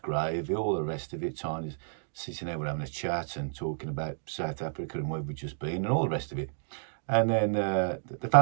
gravy, all the rest of it. Tiny's sitting there, we're having a chat and talking about South Africa and where we've just been and all the rest of it. And then the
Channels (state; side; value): silent; left; digital silence